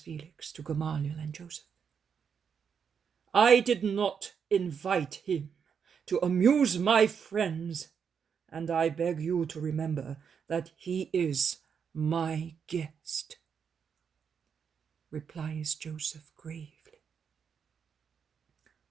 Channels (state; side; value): quieter; left; 6.9 dB